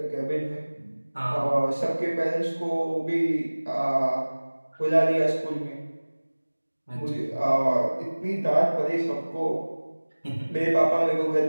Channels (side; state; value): both; inverted; correlation -1.00